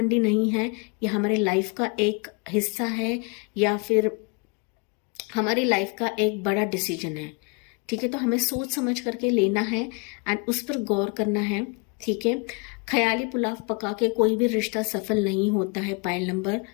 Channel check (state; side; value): quieter; right; 32.3 dB